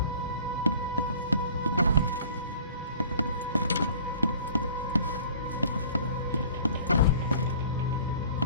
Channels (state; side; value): inverted; both; correlation -0.49